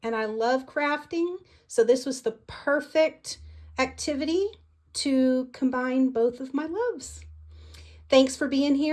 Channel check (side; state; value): both; identical; correlation 1.00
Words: and I love crafting, so this was the perfect activity to combine both of my loves. Thanks for being